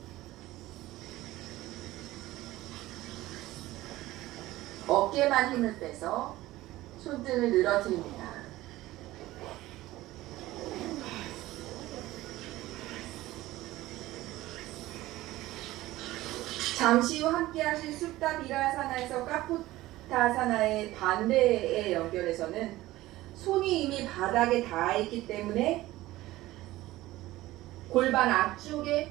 어깨만 힘을 빼서 손등을 늘어뜨립니다. 잠시 후 함께 하실 숫다 비라사나에서 까포타사나의 반대에 연결해서는 손이 이미 바닥에 닿아 있기 때문에 골반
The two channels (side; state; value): left; quieter; 17.0 dB